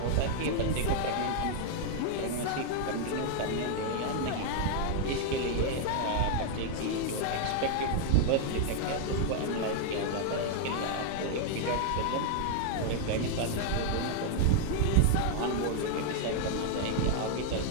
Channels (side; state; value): both; different; correlation 0.00